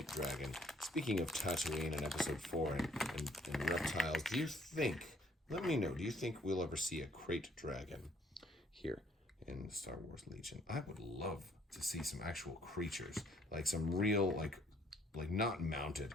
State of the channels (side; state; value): both; normal; correlation 0.64